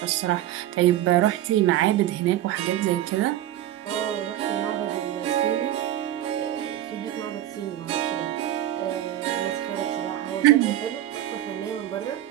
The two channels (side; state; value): left; quieter; 12.8 dB